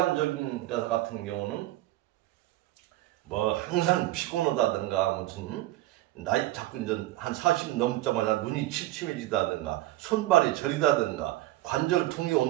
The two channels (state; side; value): quieter; left; 16.5 dB